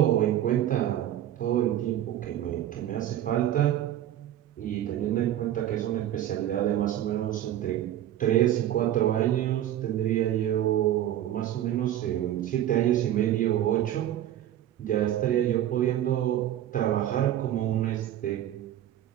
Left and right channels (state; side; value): quieter; left; 12.1 dB